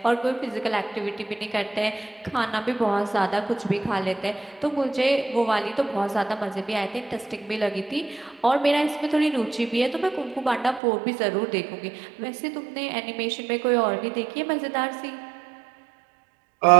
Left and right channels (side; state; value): left; drops out; at 10.8 s